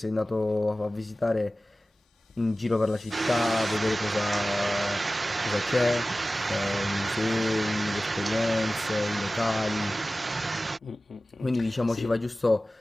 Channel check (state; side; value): normal; both; correlation 0.96